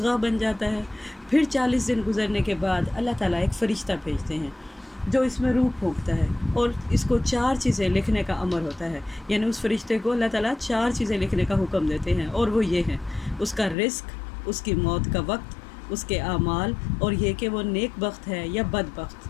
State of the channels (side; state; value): right; drops out; at 13.8 s